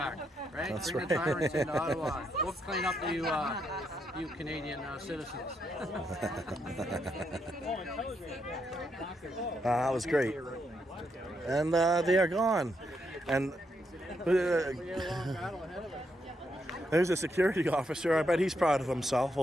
right? That's Bring right. the tyrants into Ottawa. We'll clean up the you Canadian citizens. That was great. And they are gone. And there's a security officer. I bet he's proud of himself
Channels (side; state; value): both; normal; correlation 0.79